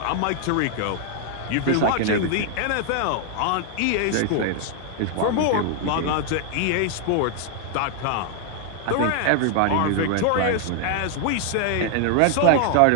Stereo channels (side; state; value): both; different; correlation 0.00